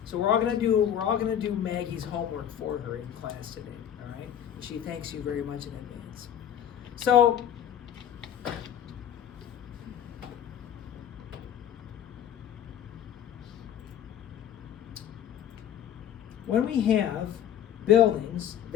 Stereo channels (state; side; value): quieter; right; 9.8 dB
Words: So we're all gonna do Maggie's homework for her in class today. All right, and she thanks you very much in advance. So when we have buildings